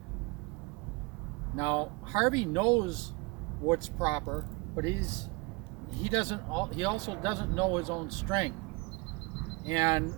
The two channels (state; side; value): quieter; left; 26.3 dB